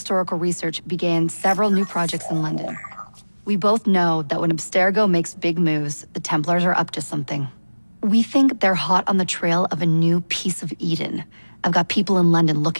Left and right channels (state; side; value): inverted; both; correlation -1.00